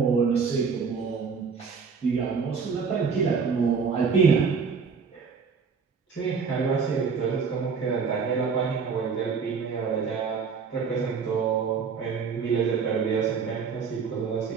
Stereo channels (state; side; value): quieter; left; 5.7 dB